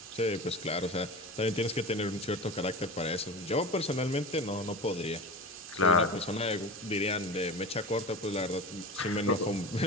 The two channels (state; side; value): normal; both; correlation 0.30